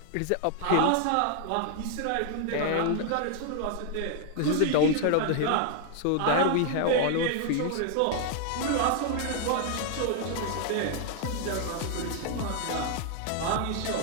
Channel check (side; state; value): both; different; correlation 0.00